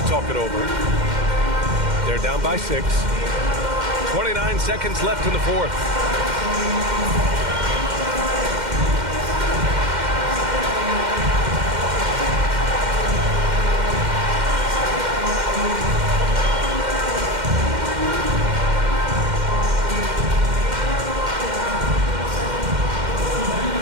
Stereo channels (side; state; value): left; late; 2.1 ms